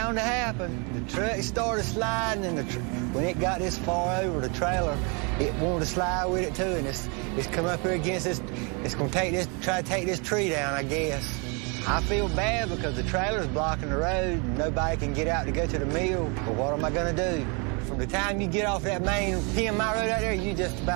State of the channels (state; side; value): quieter; left; 33.0 dB